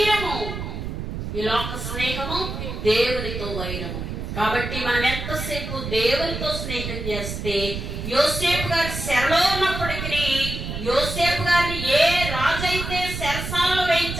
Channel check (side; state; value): right; noise; rumble, 6 dB below the sound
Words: ఈ లోక స్నేహము దేవునితో వైరము. కాబట్టి మనం ఎంతసేపు దేవునితో స్నేహం చేస్తే యోసేపు గారి చెరలో ఉన్నప్పటికీ యోసేపు గారిని ఏ రాజు అయితే చెరసాలలో